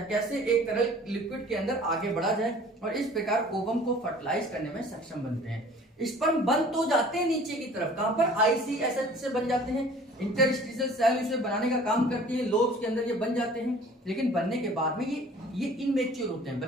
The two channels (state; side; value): normal; both; correlation 0.49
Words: कैसे एक तरल लिक्विड के अंदर आगे बढ़ा जाए, और इस प्रकार ओवम को फर्टिलाइज करने में सक्षम बनते हैं। स्पर्म बन तो जाते हैं नीचे की तरफ, कहां पर, आईसीएसएच से बन जाते हैं। इंटरस्टिशियल सेल इसे बनाने का काम करती है, लोब्स के अंदर ये बन जाते हैं, लेकिन बनने के बाद में ये इनमेच्योर होते हैं।